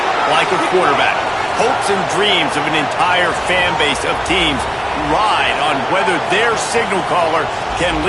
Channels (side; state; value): both; identical; correlation 1.00